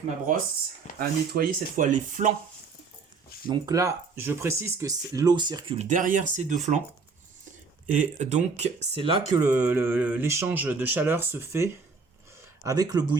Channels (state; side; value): quieter; left; 4.7 dB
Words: ma brosse à nettoyer cette fois les flancs. Donc là, je précise que l'eau circule derrière ces deux flancs. Et donc, c'est là que l'échange de chaleur se fait avec le